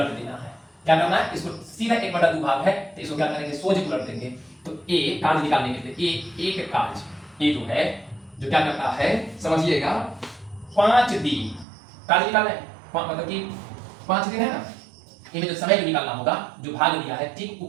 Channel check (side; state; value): left; drops out; at 11.7 s